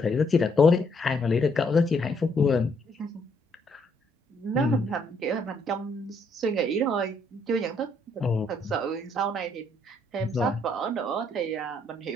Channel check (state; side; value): normal; both; correlation 0.70